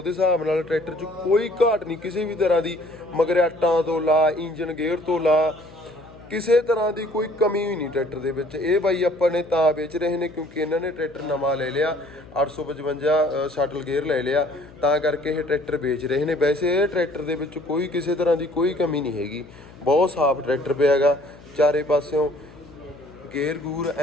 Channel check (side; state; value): left; noise; hum, 21 dB below the sound